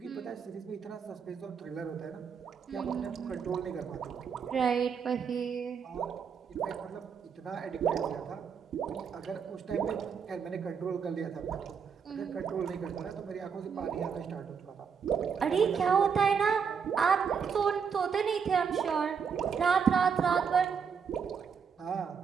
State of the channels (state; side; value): quieter; left; 6.6 dB